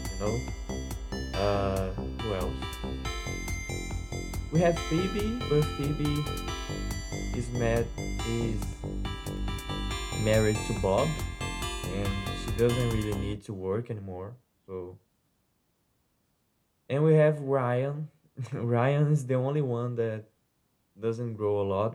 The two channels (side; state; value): both; identical; correlation 1.00